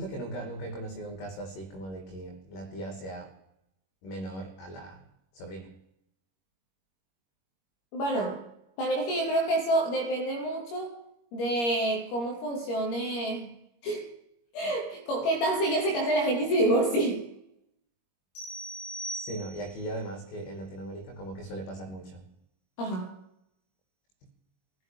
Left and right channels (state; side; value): late; right; 21 ms